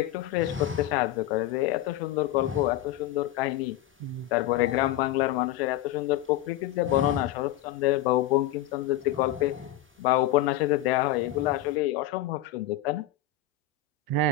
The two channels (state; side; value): quieter; right; 11.7 dB